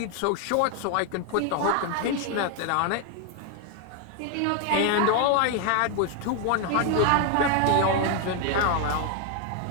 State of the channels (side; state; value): both; different; correlation 0.01